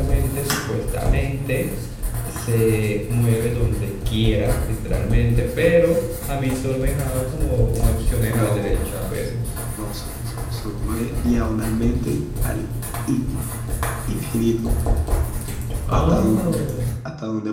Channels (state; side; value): identical; both; correlation 1.00